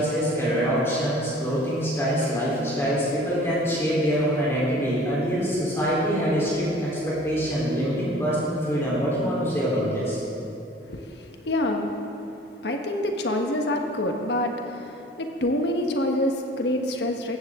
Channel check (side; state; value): both; normal; correlation 0.48